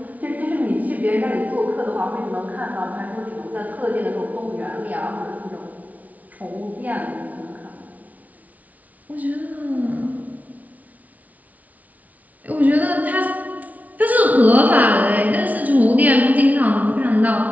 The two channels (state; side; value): late; left; 0.073 ms